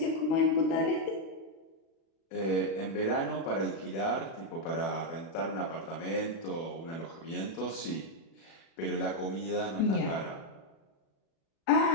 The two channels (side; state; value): right; late; 36 ms